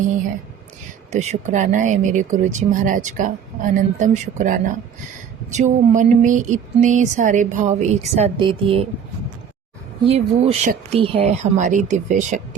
है। तो शुक्राना है मेरे गुरु जी महाराज का, अनंतम शुक्राना, जो मन में इतने सारे भाव एक साथ दे दिए। ये वो शक्ति है, हमारी दिव्य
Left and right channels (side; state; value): left; quieter; 7.8 dB